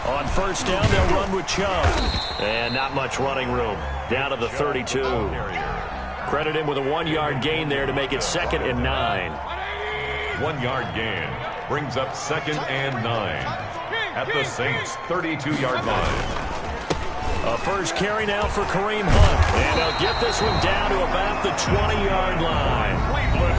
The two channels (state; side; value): identical; both; correlation 1.00